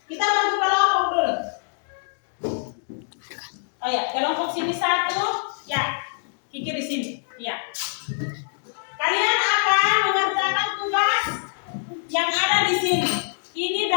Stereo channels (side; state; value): right; silent; digital silence